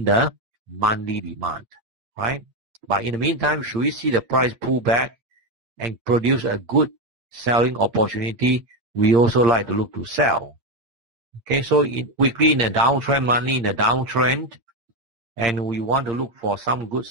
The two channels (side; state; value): left; late; 8.7 ms